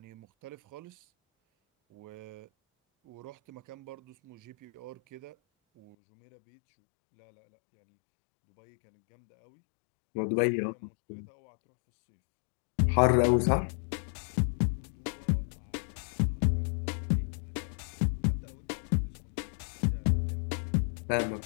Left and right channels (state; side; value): drops out; right; at 6.0 s